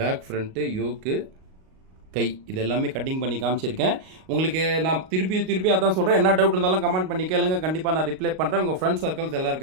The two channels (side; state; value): left; late; 38 ms